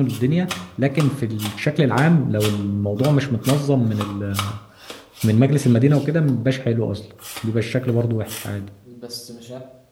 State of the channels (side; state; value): both; identical; correlation 1.00